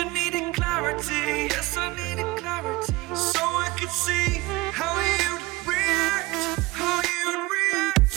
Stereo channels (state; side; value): quieter; left; 21.6 dB